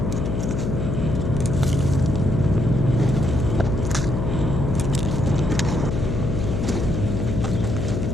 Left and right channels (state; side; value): noise; left; hum, 1 dB below the sound